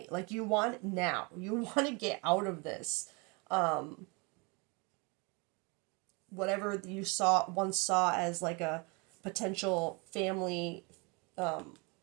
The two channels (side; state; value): left; quieter; 30.1 dB